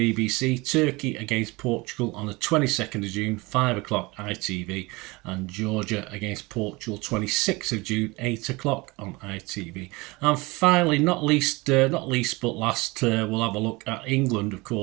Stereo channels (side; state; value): left; quieter; 23.9 dB